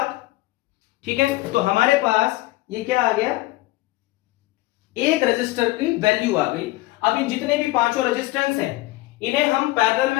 ठीक है। तो हमारे पास ये क्या आ गया, एक रजिस्टर की वैल्यू आ गई। अब इन जितने भी पांचों रेजिस्टेंस हैं इन्हें हम पैरेलल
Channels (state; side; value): quieter; right; 19.2 dB